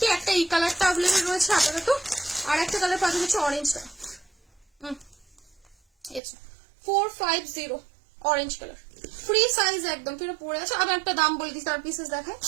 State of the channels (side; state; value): left; drops out; at 6.2 s